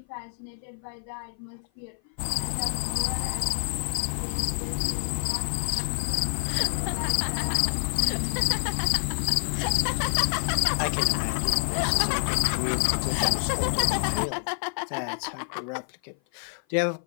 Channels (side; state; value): right; silent; 55 dB below the other